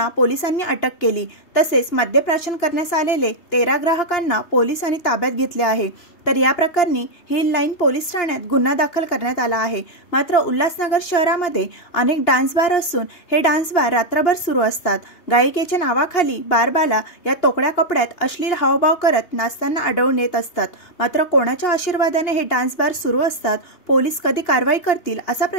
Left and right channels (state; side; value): late; right; 2.9 ms